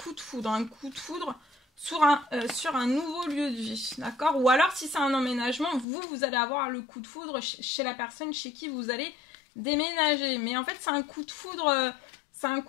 de foudre sur un nouveau lieu de vie, d'accord? Ou alors si c'est un emménagement, vous allez avoir le coup de foudre chez la personne chez qui vous allez déménager. Mais en fait c'est un coup de foudre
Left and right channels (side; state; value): right; drops out; at 5.9 s